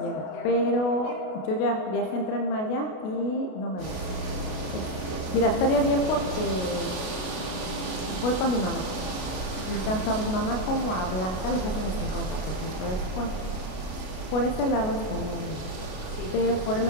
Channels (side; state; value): right; late; 32 ms